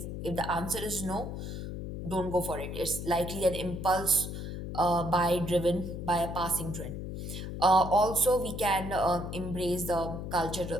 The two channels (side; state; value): left; noise; hum, 6 dB below the sound